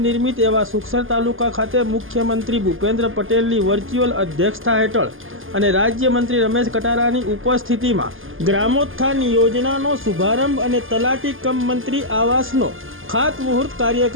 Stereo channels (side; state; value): left; late; 0.59 ms